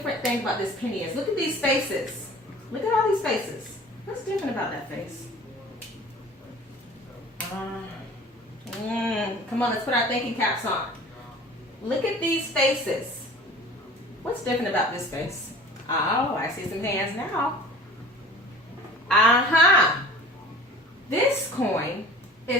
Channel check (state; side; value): normal; both; correlation 0.43